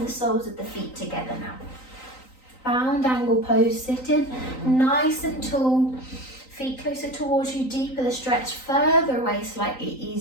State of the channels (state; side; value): late; right; 3.9 ms